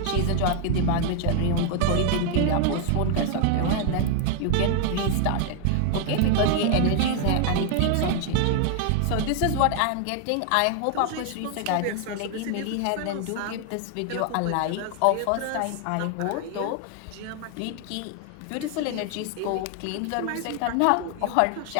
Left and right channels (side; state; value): both; different; correlation 0.00